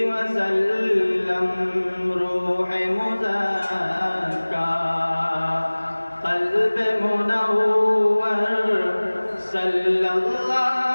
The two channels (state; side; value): inverted; both; correlation -1.00